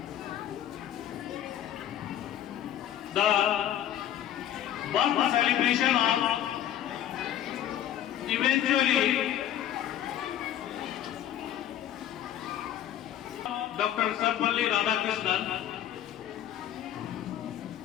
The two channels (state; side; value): quieter; right; 11.2 dB